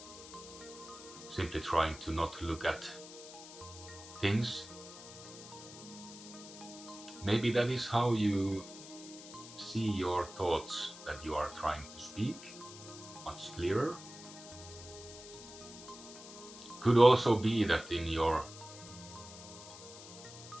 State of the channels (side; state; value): left; noise; hiss, 15 dB below the sound